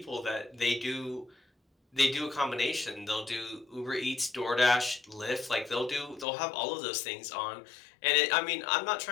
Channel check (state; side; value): drops out; right; at 6.2 s